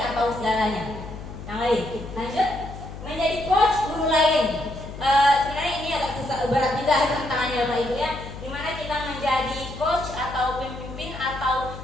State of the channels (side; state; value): left; noise; hum, 12 dB below the sound